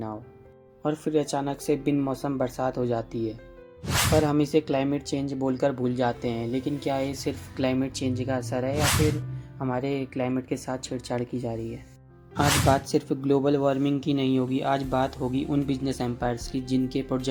हो, और फिर अचानक से बिन मौसम बरसात हो जाती है। पर हम इसे क्लाइमेट चेंज बोलकर भूल जाते हैं, लेकिन क्या ये सिर्फ क्लाइमेट चेंज का असर है या फिर हमारे क्लाइमेट के साथ छेड़छाड़ की जा रही है? आज बात सिर्फ ग्लोबल वार्मिंग की नहीं होगी, आज बात होगी उन बिजनेस एम्पायर्स की जिनके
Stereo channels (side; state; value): both; identical; correlation 1.00